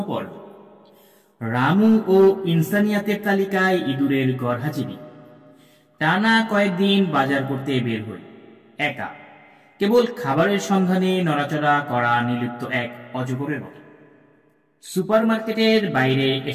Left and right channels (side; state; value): both; identical; correlation 1.00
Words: পর্ব। রামু ও ইনসানিয়াতের তালিকায় ইঁদুরের গরহাজিবি। টানা কয়েকদিন বাজার করতে বের হই, একা, কেবল খাবারের সন্ধানে নড়াচড়া করা নির্লিপ্ত এক অজগরের মতো। সুপারমার্কেটের বাইরে